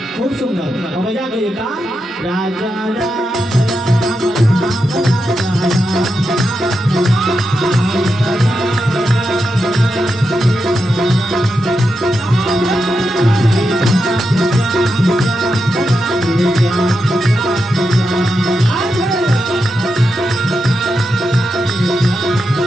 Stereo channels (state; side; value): normal; both; correlation 0.87